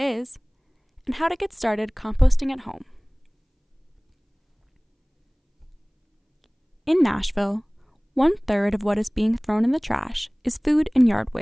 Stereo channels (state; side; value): identical; both; correlation 1.00